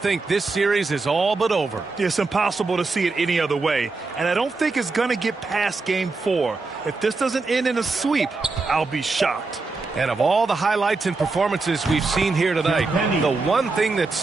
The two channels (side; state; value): left; quieter; 3.8 dB